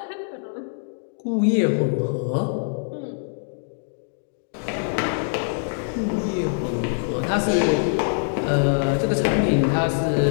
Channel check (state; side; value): silent; right; digital silence